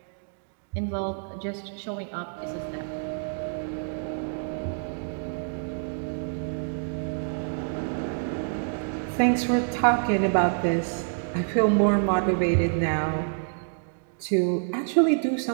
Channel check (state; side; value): silent; left; digital silence